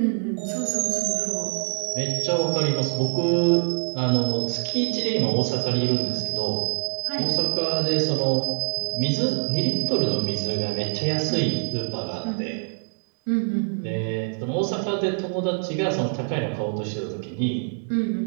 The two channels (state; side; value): silent; left; digital silence